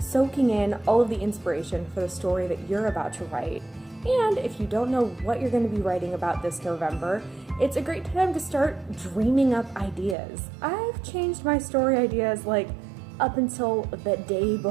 in all of the inspiration for the story that you're about to write. And if you don't know what you're going to be writing about this November, it's a great time to start dreaming up ideas. I've changed my story ideas like up until the day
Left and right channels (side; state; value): left; drops out; at 10.2 s